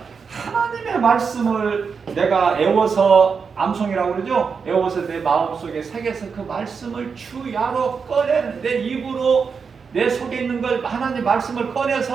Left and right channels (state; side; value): quieter; left; 5.7 dB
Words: 하나님의 말씀을 내가 애워서 암송이라고 그러죠. 애워서 내 마음속에 새겨서 그 말씀을 주야로 꺼내는 내 입으로 내 속에 있는 걸 하나님 말씀을